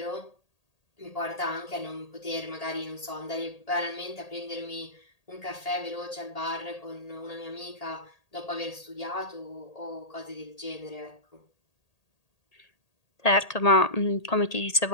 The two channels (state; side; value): late; right; 1.8 ms